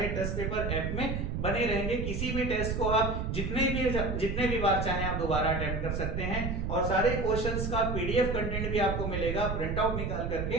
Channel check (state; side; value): noise; right; rumble, 2 dB below the sound